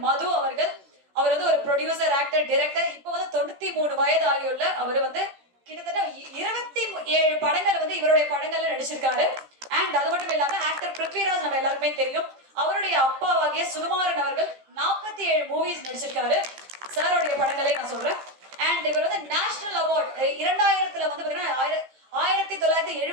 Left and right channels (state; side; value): late; left; 15 ms